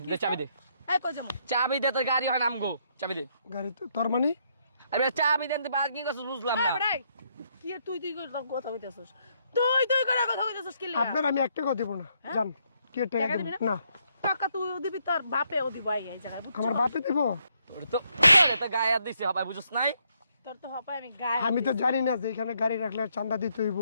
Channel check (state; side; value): inverted; both; correlation -0.74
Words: দে চাবি দে, এই কই যামু? চাবি দে, তোর গাড়ি হয় আমগো, চাবি দে। গাড়ি তো তোর মানে? আরে চাবি দেন, তুই পার্কিং করছিস বুঝলাম এই না। বেটা, কি এর তুই তুই করে কথা কইতাছস? তুই করে কথা কইতাছস কি লাগা? আপনার আমি এক টাকা দেবো না, যান। কি এর টাকা টাকা দেবো? দিবি না, টাকা তুইও দিবি, তোর বাপেও দিব এই জায়গায়, বুঝছস? আমার বাপে দেবো? তোর তো তো গায়ে হাত দিছে হবাই, বুঝছ নাই? তোর তো হপায় আমি গায়ে আমি তো জানি না যে এখানে গাড়ি রাখলে চাঁদা দিতে হইব।